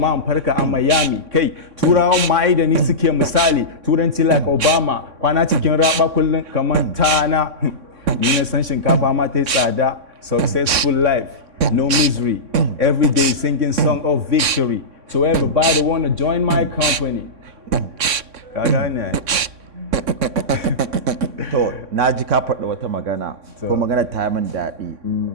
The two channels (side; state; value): left; late; 3.6 ms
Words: in farka a Miami kai turawan ma da ni suke misali turanci like Obama kwana cikin raba kullum kamar tana ni na san shinkafa ma ta yi tsada successful life no misery every day singing song of victory so everybody wanna join my company ka gane to na ji ka faɗi wata magana ko magana ta yi min daɗi